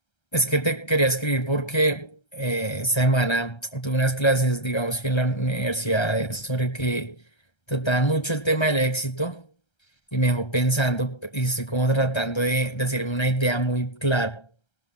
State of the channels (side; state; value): right; late; 1.3 ms